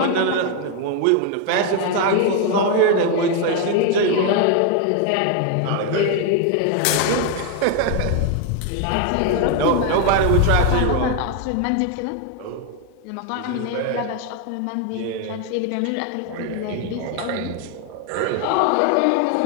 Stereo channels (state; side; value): different; both; correlation 0.01